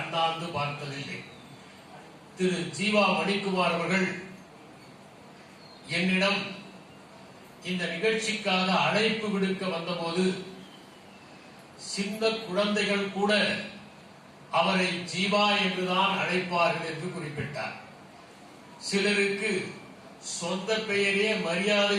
பார்த்ததில்லை. திரு ஜீவா மணிக்குமார் அவர்கள் என்னிடம் இந்த நிகழ்ச்சிக்காக அழைப்பு விடுக்க வந்தபோது சின்ன குழந்தைகள் கூட அவரை ஜீவா என்றுதான் அழைப்பார்கள் என்று குறிப்பிட்டார். சிலருக்கு சொந்த பெயரே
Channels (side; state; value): both; identical; correlation 1.00